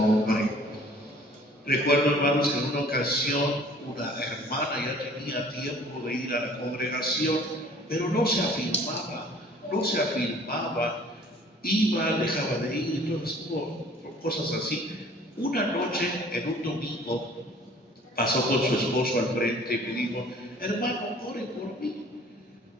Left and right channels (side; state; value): both; normal; correlation 0.52